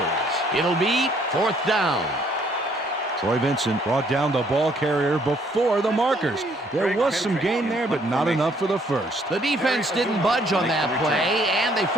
It'll be fourth down. Troy Vincent brought down the ball carrier before the markers. There was some gain there, but not enough for the first. The defense didn't budge on that play, and they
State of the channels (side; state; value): both; normal; correlation 0.65